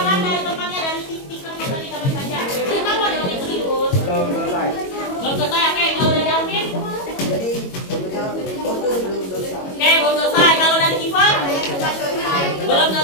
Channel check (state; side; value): late; right; 22 ms